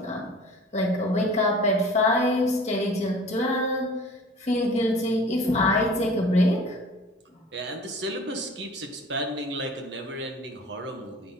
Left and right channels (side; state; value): both; normal; correlation 0.44